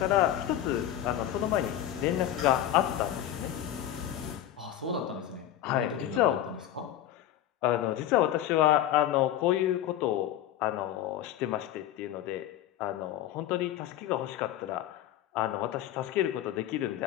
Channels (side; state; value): right; quieter; 12.0 dB